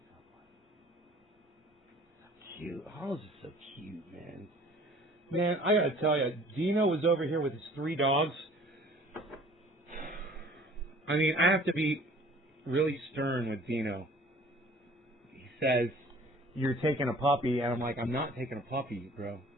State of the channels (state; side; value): normal; both; correlation 0.51